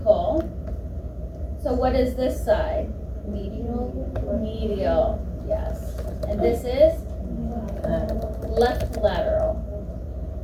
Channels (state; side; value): identical; both; correlation 1.00